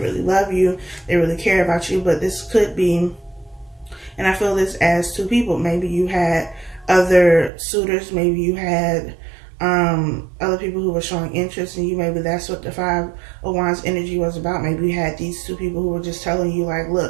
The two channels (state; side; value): drops out; left; at 7.5 s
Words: love you, they really care about you. But this could be, and I feel this as two people. Maybe you had other suitors. Maybe you had other people who were showing interest in you. Maybe that's what the Five of Wands energy was about. Maybe you had these two people who were just telling you, like,